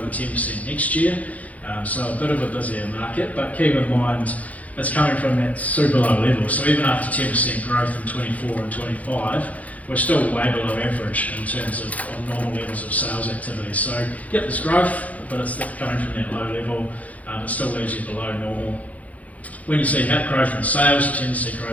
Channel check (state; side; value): late; right; 0.071 ms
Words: 10% next year. So a bit of a busier market, but keep in mind it's coming from that super low level. So even after 10% growth in 24 and 25, we're still way below average in terms of normal levels of sales activity. So yep, there's growth, but it's coming from that low level. It still leaves you below normal. When you see growth in sales, you tend to see